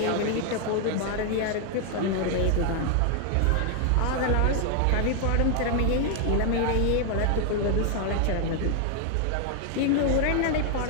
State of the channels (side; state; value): both; different; correlation 0.00